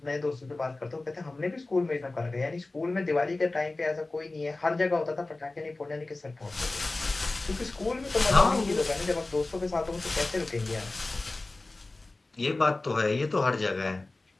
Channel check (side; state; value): right; quieter; 3.1 dB